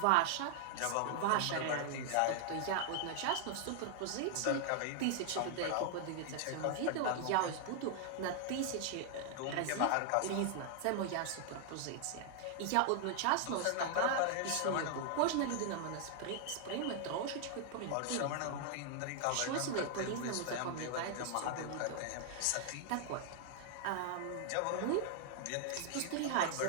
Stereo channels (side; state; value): both; different; correlation 0.00